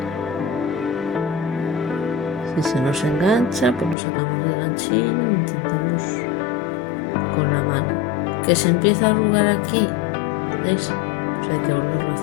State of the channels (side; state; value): right; drops out; at 4.0 s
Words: Si se nos engancha, pues lo sacamos del ganchillo e intentamos con la mano. Que se empieza a arrugar aquí, ¿veis? Pues hay que volverlo a